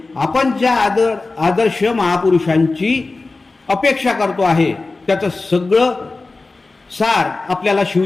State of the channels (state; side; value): quieter; right; 3.5 dB